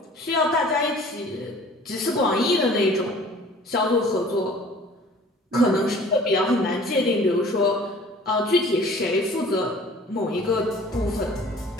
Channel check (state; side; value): normal; both; correlation 0.49